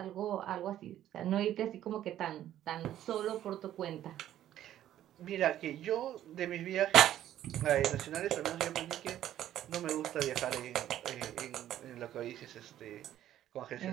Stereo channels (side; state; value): left; quieter; 12.1 dB